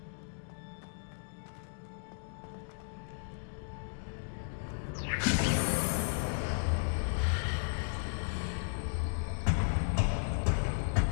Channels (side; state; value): right; silent; digital silence